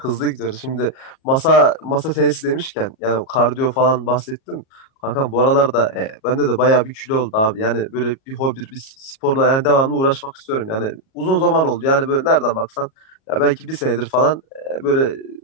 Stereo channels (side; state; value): right; late; 37 ms